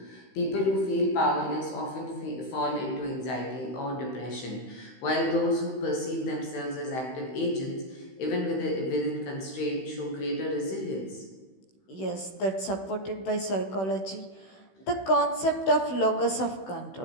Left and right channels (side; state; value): right; late; 16 ms